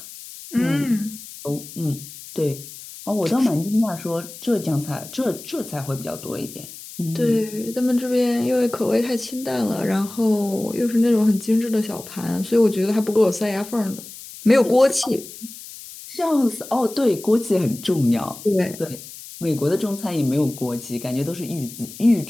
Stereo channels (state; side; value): noise; left; hiss, 15 dB below the sound